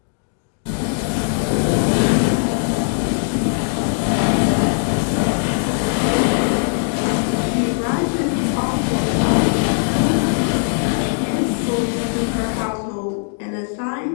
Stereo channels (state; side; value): silent; right; 59 dB below the other